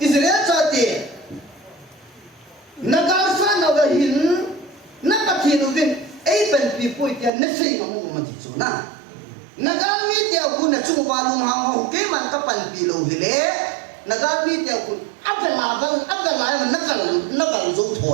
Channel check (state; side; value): drops out; left; at 7.3 s